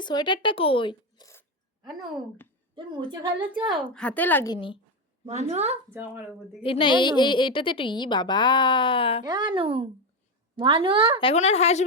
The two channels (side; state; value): both; normal; correlation 0.11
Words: সোয়েটারটা কই? আনু তুমি মুছে ফেলেছ? হাতে লাগিনি মানু জামার উপর দিকে, এই না এইটাতে একটু বাবা। আনু মানু এখন আর